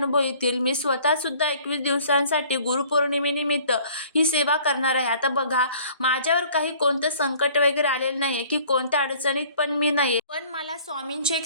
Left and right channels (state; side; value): inverted; both; correlation -0.53